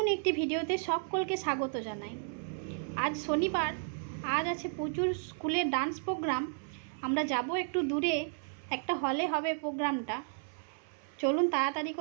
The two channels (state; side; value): silent; left; 56 dB below the other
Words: একটি ভিডিওতে সকলকে স্বাগত জানাই। আজ শনিবার, আজ আছে প্রচুর স্কুলের ডান্স প্রোগ্রাম। আমরা যাব একটু দূরে, একটা হলে হবে প্রোগ্রামটা। চলুন তাড়াতাড়ি